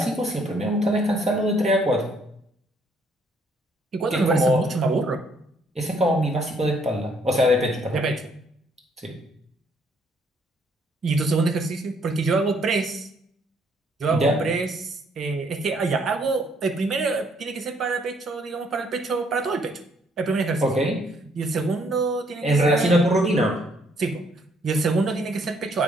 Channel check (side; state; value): both; normal; correlation 0.67